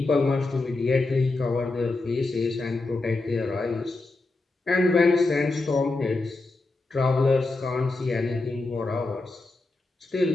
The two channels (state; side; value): quieter; right; 3.3 dB